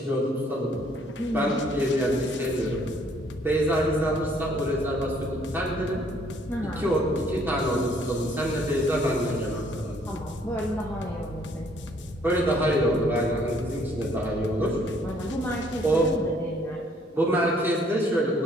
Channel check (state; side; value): normal; both; correlation 0.63